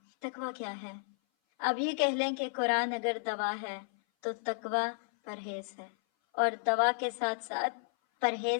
تقویٰ کیا ہے؟ اب یہ کہہ لیں کہ قرآن اگر دوا ہے تو تقویٰ پرہیز ہے، اور دوا کے ساتھ ساتھ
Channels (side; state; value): right; silent; 56 dB below the other